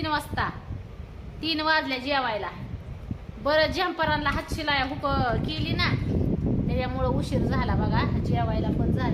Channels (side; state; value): both; identical; correlation 1.00